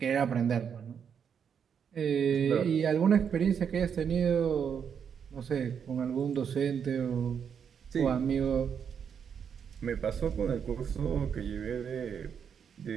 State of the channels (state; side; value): quieter; left; 7.4 dB